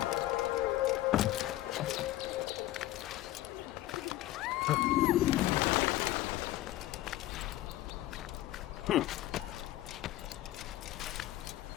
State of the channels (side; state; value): right; quieter; 15.5 dB